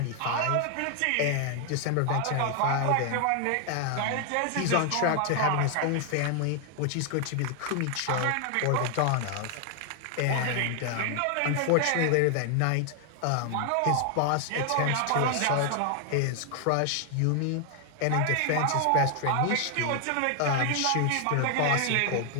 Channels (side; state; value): both; different; correlation 0.00